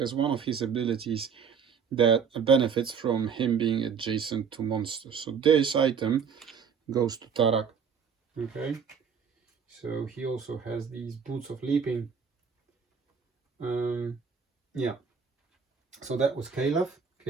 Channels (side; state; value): left; quieter; 6.5 dB